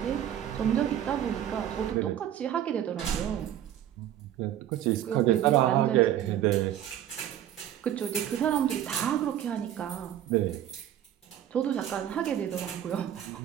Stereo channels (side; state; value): left; quieter; 11.2 dB